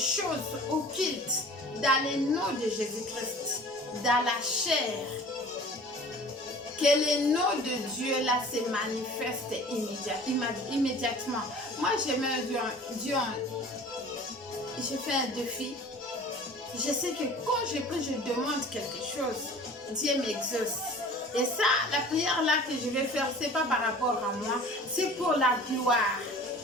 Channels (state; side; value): normal; both; correlation 0.44